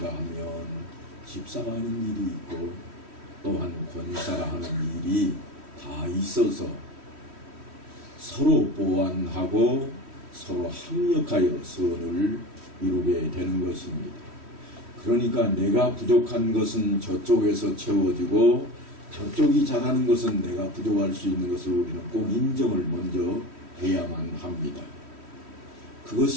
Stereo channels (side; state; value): left; late; 3.1 ms